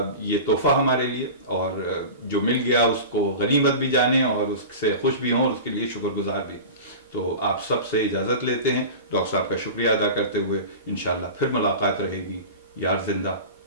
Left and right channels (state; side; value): inverted; both; correlation -0.32